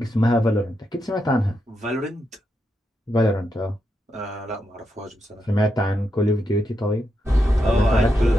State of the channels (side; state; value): both; normal; correlation 0.84